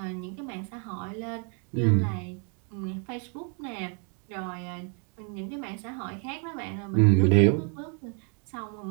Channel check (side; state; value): left; quieter; 39.6 dB